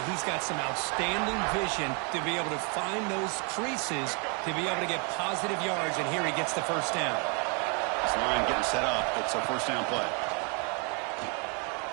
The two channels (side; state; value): left; quieter; 35.9 dB